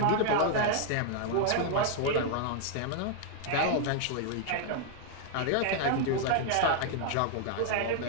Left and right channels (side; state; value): both; different; correlation 0.00